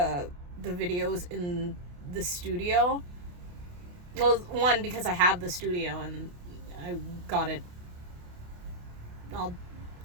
videos in the studio. Well, one, because I have the studio and I got it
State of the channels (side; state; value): left; late; 28 ms